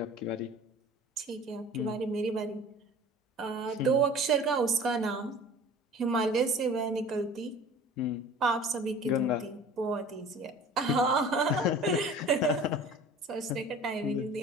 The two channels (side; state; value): both; normal; correlation 0.43